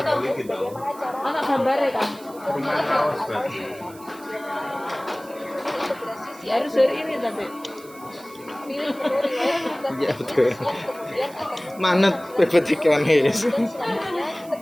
iki tahu. bagaimana cara Anak gambarnya kan. Rumah kaos berarti. integrasi Harus dari ini tapi. pilih menu riwayat bukan Ya betul. yang kemudian akan Manut PPTK nih. dan selanjutnya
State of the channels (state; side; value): noise; right; hiss, 22 dB below the sound